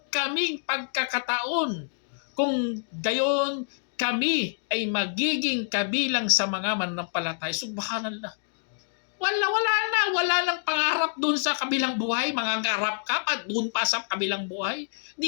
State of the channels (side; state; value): right; silent; digital silence